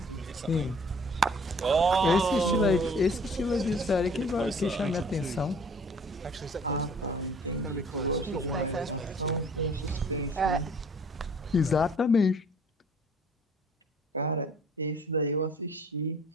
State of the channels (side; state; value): both; normal; correlation 0.53